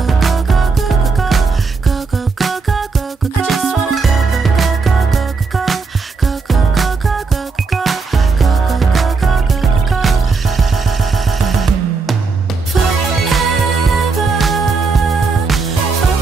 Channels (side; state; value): left; quieter; 4.5 dB